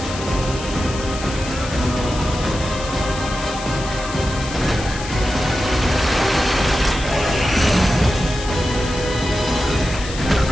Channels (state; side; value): noise; left; hiss, 11 dB below the sound